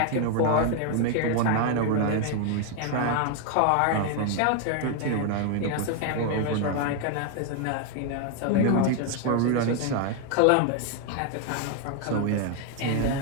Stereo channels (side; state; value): both; different; correlation 0.01